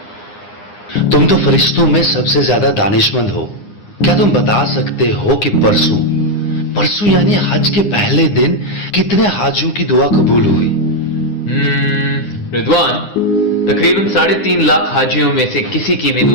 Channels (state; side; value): late; right; 9.8 ms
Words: तुम तो फरिश्तों में सबसे ज्यादा दानिशमंद हो। क्या तुम बता सकते हो कि परसों यानी हज के पहले दिन कितने हाजियों की दुआ कबूल हुई? रिदवान, तकरीबन 3.5 लाख हाजियों में से किसी की भी